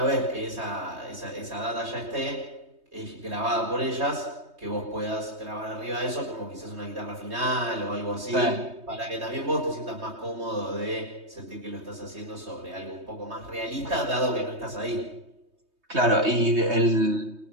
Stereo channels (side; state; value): left; late; 3.2 ms